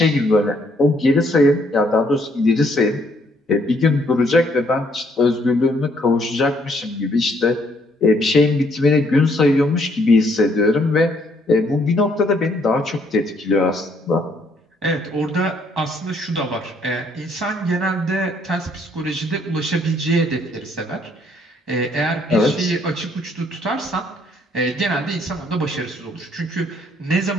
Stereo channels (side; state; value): both; normal; correlation 0.67